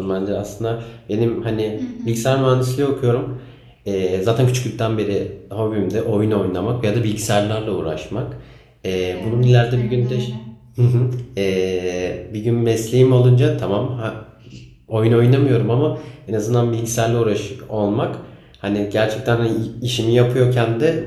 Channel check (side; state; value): both; identical; correlation 1.00